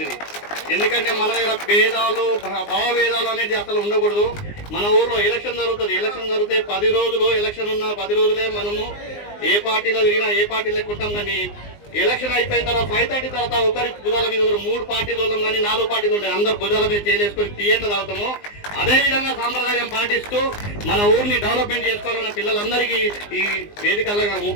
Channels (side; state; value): right; late; 19 ms